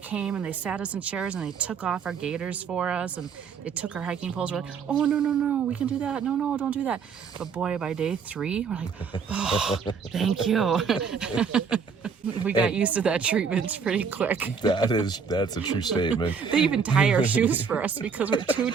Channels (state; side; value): quieter; left; 6.0 dB